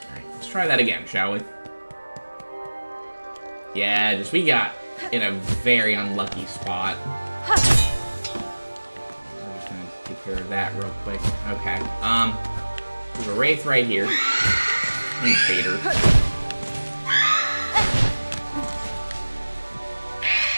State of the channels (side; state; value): both; inverted; correlation -1.00